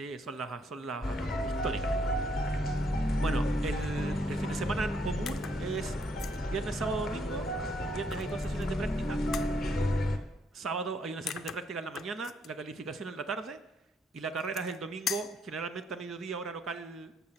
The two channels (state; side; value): normal; both; correlation 0.72